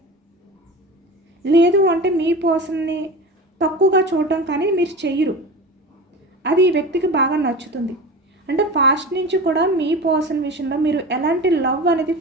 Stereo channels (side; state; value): both; normal; correlation 0.31